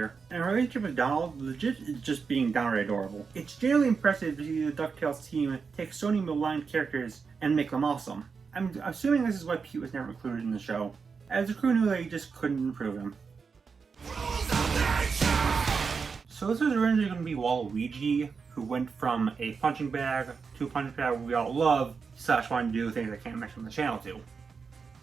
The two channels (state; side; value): quieter; left; 5.4 dB